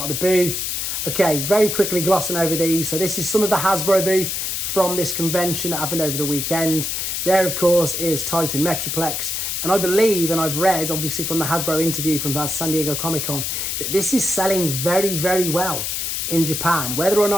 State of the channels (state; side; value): noise; left; hiss, 2 dB below the sound